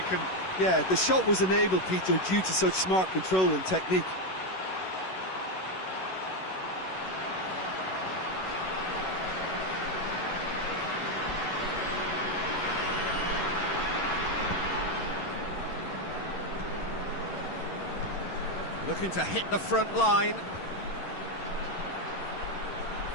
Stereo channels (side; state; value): right; late; 11 ms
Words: Yeah, the shot was enabled, Peter, due to such smart control and technique. Looking to hit the front line.